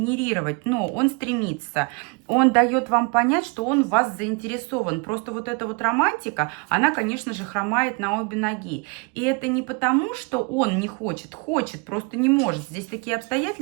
Но он стремится. Он дает вам понять, что он в вас заинтересован. Просто вот эта вот романтика, она, конечно же, хромает на обе ноги. И это не потому, что он не хочет, хочет, просто не может. Здесь такие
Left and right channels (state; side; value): quieter; left; 30.8 dB